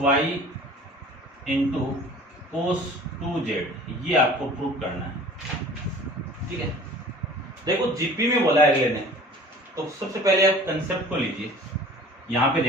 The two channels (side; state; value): both; normal; correlation 0.46